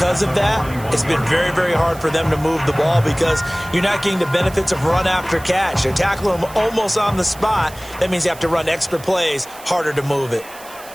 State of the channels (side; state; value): right; noise; hiss, 19 dB below the sound